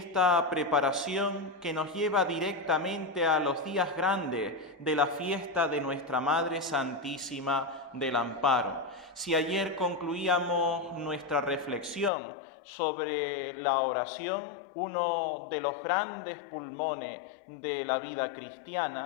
preparación que nos lleva directamente a los días grandes de la fiesta de nuestra Madre Santísima del Amparo. Si ayer concluíamos nuestra reflexión sobre la oración, uno de los grandes pulmones de la vida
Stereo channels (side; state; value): right; drops out; at 12.1 s